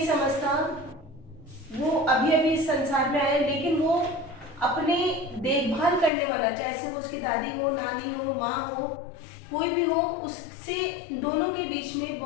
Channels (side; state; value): right; drops out; at 6.1 s